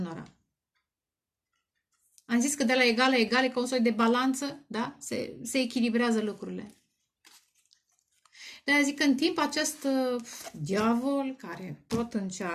Am zis că de la egal la egal e ca un soi de balanță, da? Se echilibrează lucrurile. De-aia zic că în timp acest diavol care tot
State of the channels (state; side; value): identical; both; correlation 1.00